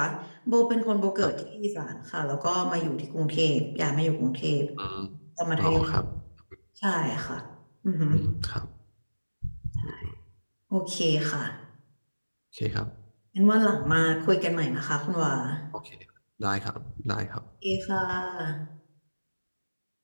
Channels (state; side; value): inverted; both; correlation -1.00